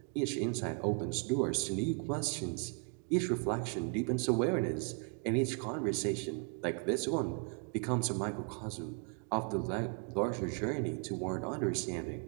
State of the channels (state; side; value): quieter; left; 39.5 dB